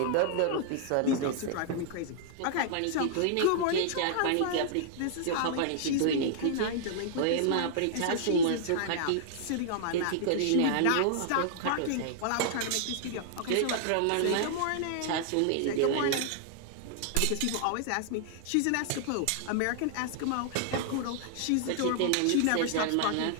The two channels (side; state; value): both; different; correlation -0.01